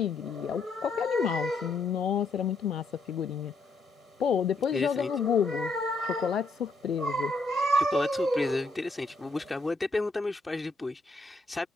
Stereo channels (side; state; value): right; quieter; 3.4 dB